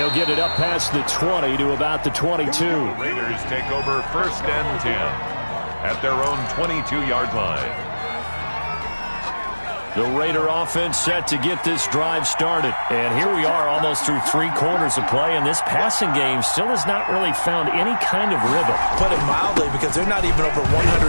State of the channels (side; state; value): both; inverted; correlation -1.00